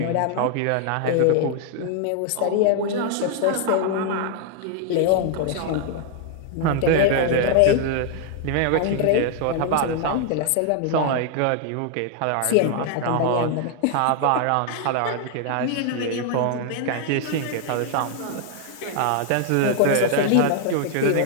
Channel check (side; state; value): both; different; correlation 0.00